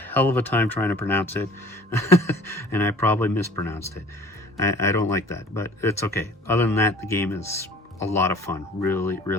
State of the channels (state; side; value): normal; both; correlation 0.48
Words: of a time trying to pronounce it, and I probably mispronounced it. I don't like that, but it's okay. Other than that, the game is a lot of fun. Really,